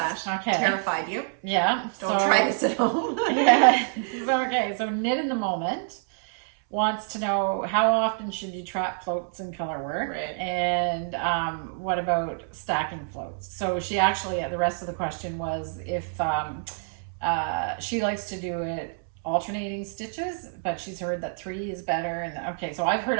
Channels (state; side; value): silent; left; 60 dB below the other